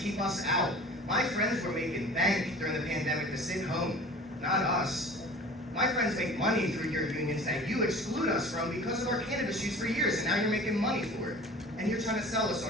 us out. My friends were making bank during the pandemic to sit home, not us. My friends make money through your unions that you exclude us from because of our cannabis use for years, and now you're making money for it. And you're trying to sell us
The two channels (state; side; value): normal; both; correlation 0.42